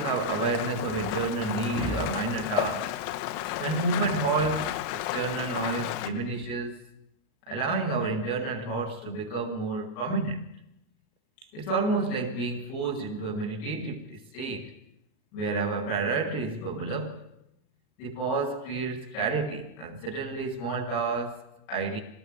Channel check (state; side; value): late; right; 39 ms